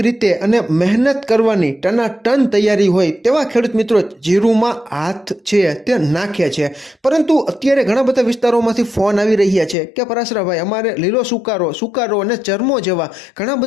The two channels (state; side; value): drops out; right; at 9.8 s